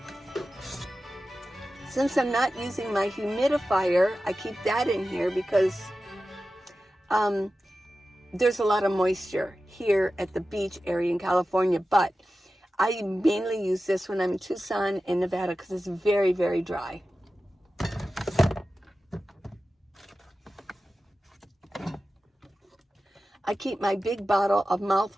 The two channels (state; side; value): normal; both; correlation 0.94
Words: Since I'm not using my humidifier, I keep that in here because there's a lot of moisture here at the beach area in California, but I mainly use this when I'm in Tucson and Nevada because it's very, very dry. I keep my big bottle of